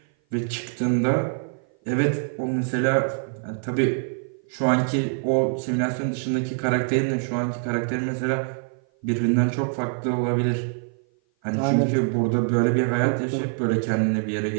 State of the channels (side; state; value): left; silent; 56 dB below the other